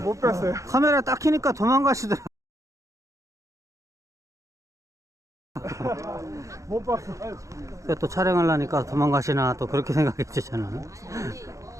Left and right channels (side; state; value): left; late; 0.15 ms